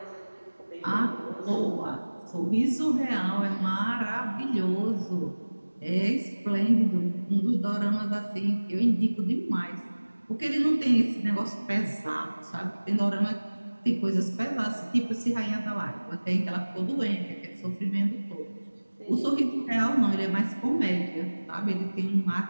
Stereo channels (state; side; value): inverted; both; correlation -1.00